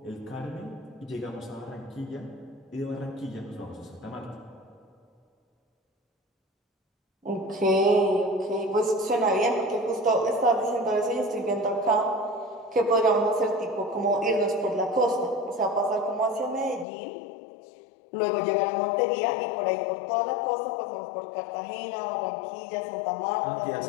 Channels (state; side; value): drops out; right; at 16.9 s